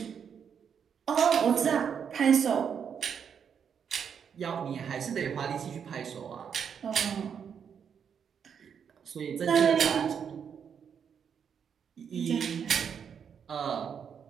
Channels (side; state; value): left; quieter; 7.4 dB